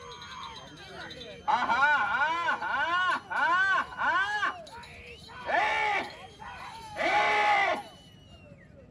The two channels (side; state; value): both; identical; correlation 1.00